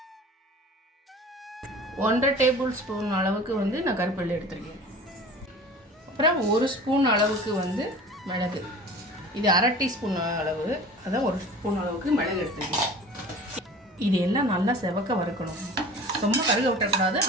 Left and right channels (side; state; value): both; normal; correlation 0.41